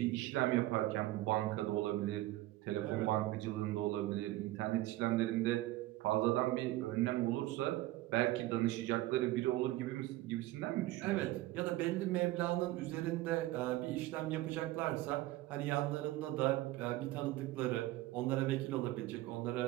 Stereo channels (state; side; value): quieter; left; 16.9 dB